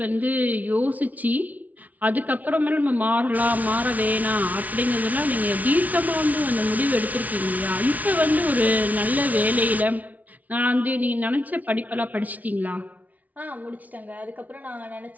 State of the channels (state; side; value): late; left; 0.073 ms